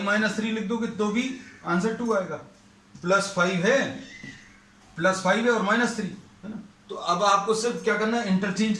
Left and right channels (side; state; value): both; identical; correlation 1.00